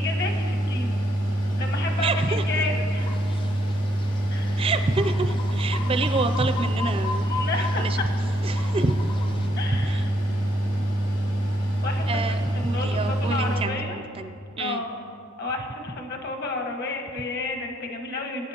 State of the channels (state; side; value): normal; both; correlation 0.73